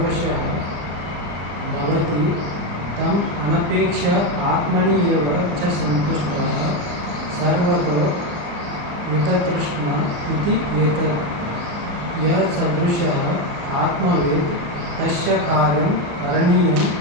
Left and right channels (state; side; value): late; left; 35 ms